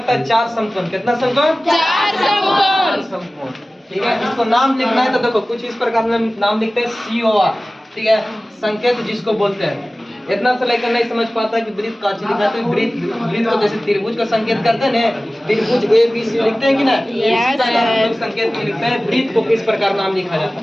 है 4 समकोण। कितना समकोण? 4 समकोण, ठीक है। इसको नाम लिखना है तो देखो कुछ इस प्रकार में नाम लिखते हैं COR, ठीक है, संकेत जिसको बोलते हैं। इतना से लेकर नहीं समझ पाता कि ब्रीथ काची लिखा है, तो ब्रीथ को जैसे त्रिभुज का संकेत करते हैं ना, त्रिभुज ABC लिखते हैं कि ना, इसी प्रकार हम लोग संकेत में लिखते हैं ब्रीथ को किस प्रकार नाम लिखा जाता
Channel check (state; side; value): normal; both; correlation 0.97